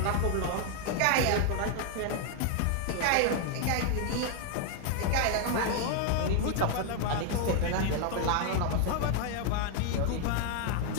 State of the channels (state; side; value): different; both; correlation 0.00